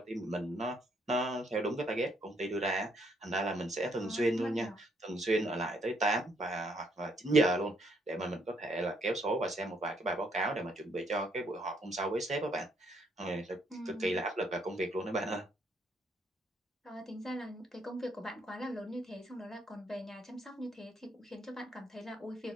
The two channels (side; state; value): both; normal; correlation 0.71